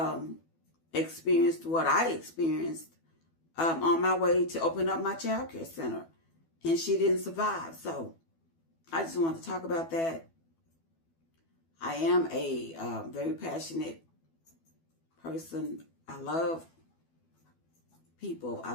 experienced, what I experienced on my way to open up my child care center, and she didn't survive. So I just want to talk about that. I am a very passionate person. I love people. I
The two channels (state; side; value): late; right; 12 ms